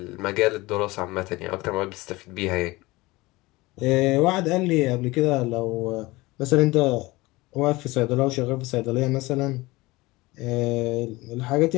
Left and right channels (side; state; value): right; quieter; 21.1 dB